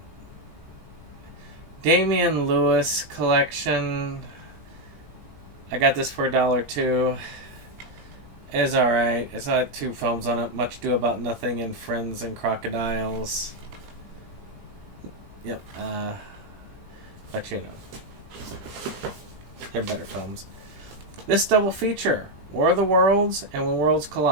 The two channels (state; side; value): late; left; 17 ms